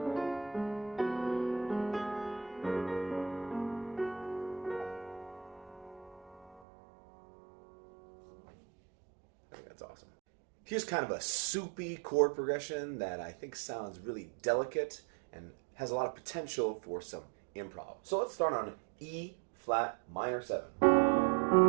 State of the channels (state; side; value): drops out; left; at 6.6 s